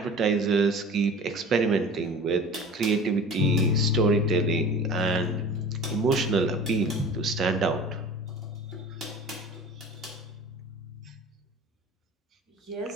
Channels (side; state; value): both; normal; correlation 0.39